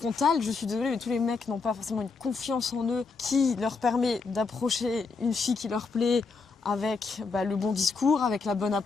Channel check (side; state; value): right; quieter; 4.5 dB